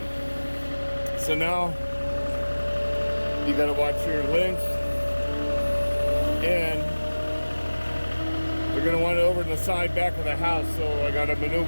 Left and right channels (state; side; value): inverted; both; correlation -1.00